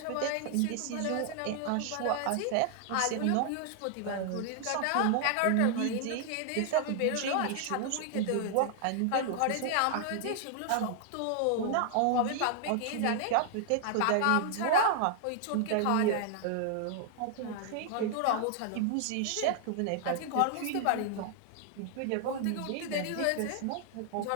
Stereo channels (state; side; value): different; both; correlation 0.00